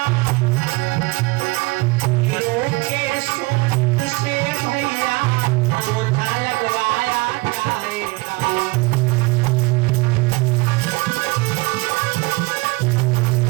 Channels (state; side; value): quieter; left; 24.5 dB